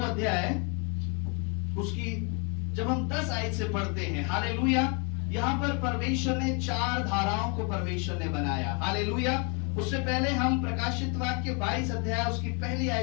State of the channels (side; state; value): right; quieter; 34.0 dB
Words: अध्याय उसकी जब हम 10 आयत से पढ़ते हैं। हालेलुया। यहां पर परमेश्वर ने 4 धाराओं को परमेश्वर ने बनाया। हालेलुया। उससे पहले हम प्रकाशित वाक्य 22 अध्याय उसकी पहली